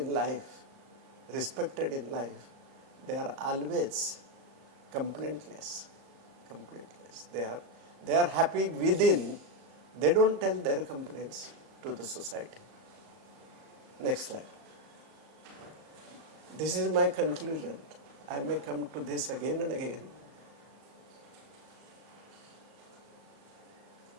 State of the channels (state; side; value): late; left; 38 ms